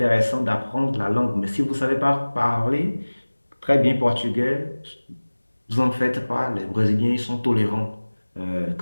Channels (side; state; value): both; inverted; correlation -1.00